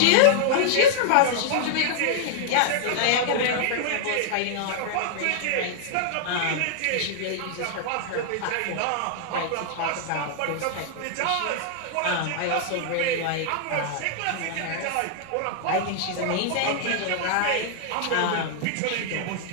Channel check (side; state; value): both; different; correlation -0.01